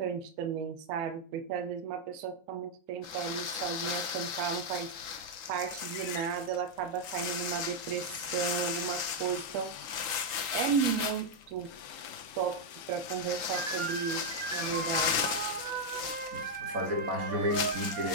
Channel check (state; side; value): late; left; 3.8 ms